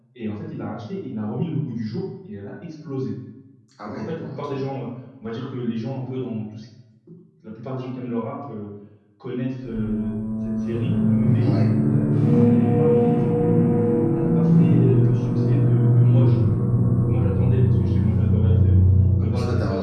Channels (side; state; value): both; identical; correlation 1.00